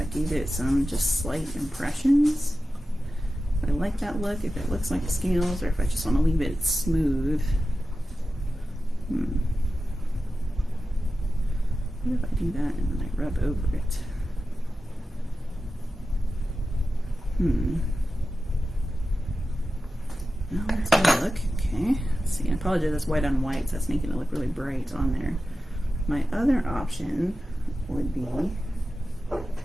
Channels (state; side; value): normal; both; correlation 0.93